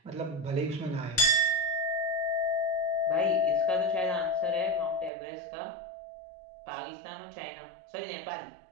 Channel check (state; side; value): drops out; left; at 5.1 s